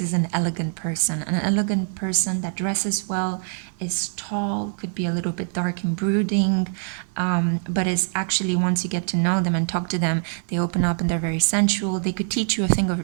an elegant person that dresses well, is tall, could be a little bit dark and brooding, but is actually, once you get to know them and talk to them, they open up and they're very sensual. They could teach you a thing or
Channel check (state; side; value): silent; left; 63 dB below the other